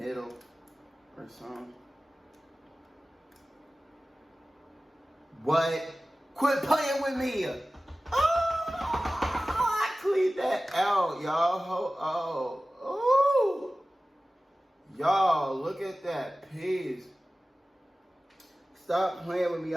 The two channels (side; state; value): both; normal; correlation 0.96